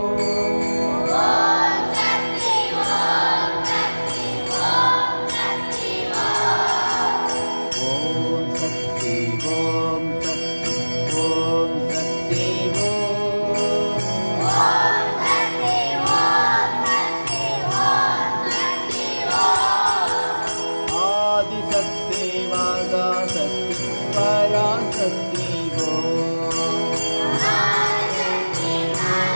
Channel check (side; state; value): both; inverted; correlation -1.00